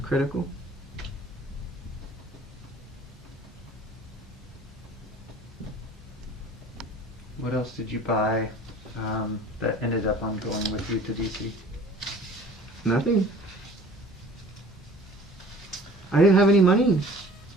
Critical. What else did you buy that ended up on going with you to DC? Nothing. I didn't have any money.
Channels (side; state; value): both; normal; correlation 0.47